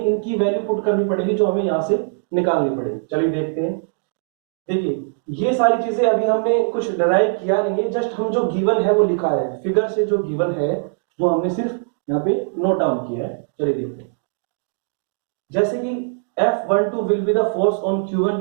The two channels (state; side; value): silent; left; digital silence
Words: वैल्यू पुट करनी पड़ेगी जो हमें यहाँ से निकालनी पड़ेगी। चलिए देखते हैं। देखिए ये सारी चीजें अभी हमने कुछ डराइव किया नहीं है, जस्ट हम जो गिवन है वो लिखा है। फिगर से जो गिवन है वो हमने सिर्फ यहाँ पे नोट डाउन किया है। चलिए देखते हैं। जैसे कि F12 will be the force on Q1